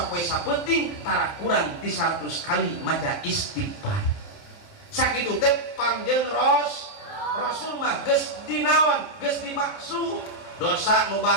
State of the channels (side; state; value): right; late; 29 ms